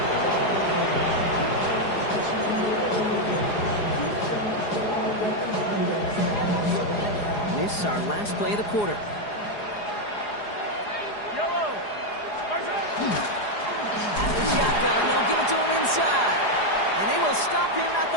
This is our last play of the quarter. Shotgun, they'll give it to him inside. And they will stop him at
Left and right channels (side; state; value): right; late; 4.8 ms